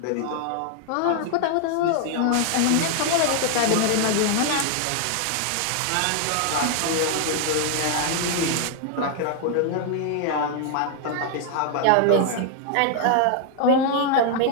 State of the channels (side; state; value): both; different; correlation 0.00